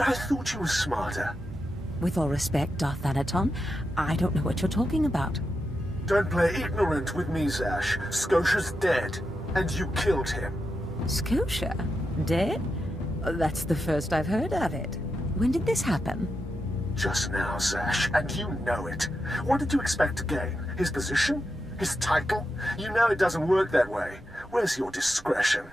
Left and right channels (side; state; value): both; normal; correlation 0.87